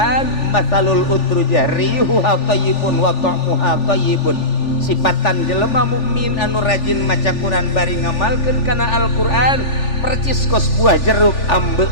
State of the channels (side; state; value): right; late; 3.4 ms